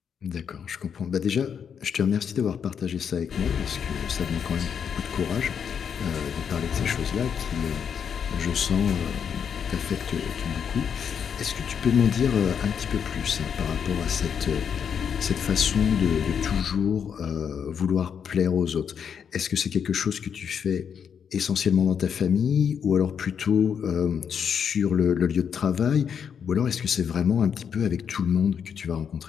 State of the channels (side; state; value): right; quieter; 7.5 dB